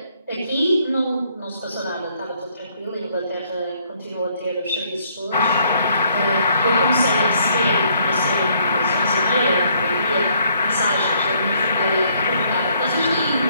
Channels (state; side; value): inverted; both; correlation -0.67